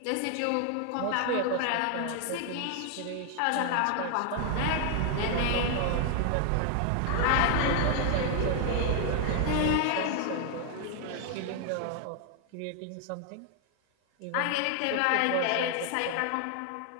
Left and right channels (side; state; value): both; different; correlation 0.00